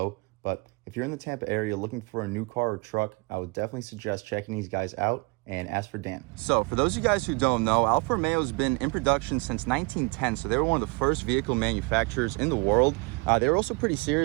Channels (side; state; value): left; quieter; 28.4 dB